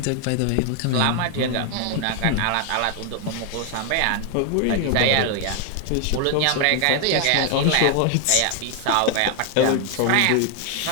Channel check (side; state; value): both; different; correlation 0.00